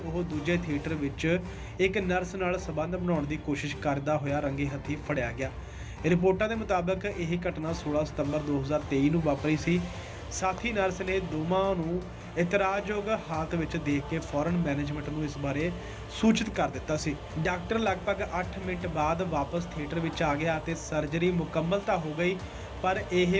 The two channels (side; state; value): both; identical; correlation 1.00